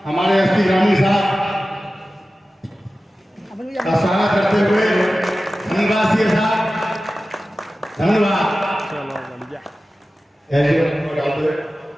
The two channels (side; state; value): both; normal; correlation 0.95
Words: हमारे एसपी ग्रामीण साहब का स्वागत करते हुए धन्यवाद सीए साहब, धन्यवाद।